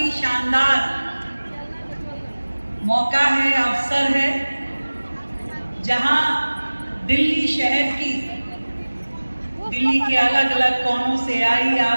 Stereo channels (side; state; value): both; inverted; correlation -1.00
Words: शानदार मौका है, अवसर है, जहां दिल्ली शहर की, दिल्ली के अलग अलग कोनों से आई